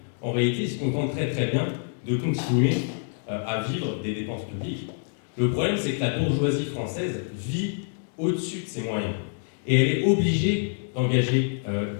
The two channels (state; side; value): silent; right; 61 dB below the other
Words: En réalité, ils se contentent très très bien de continuer à vivre des dépenses publiques. Le problème, c'est que la bourgeoisie française vit au-dessus de ses moyens. Et elle est obligée d'engager